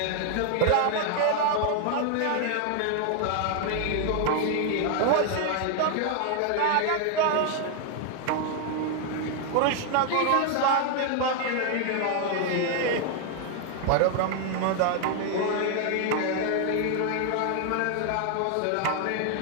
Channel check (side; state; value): both; different; correlation 0.00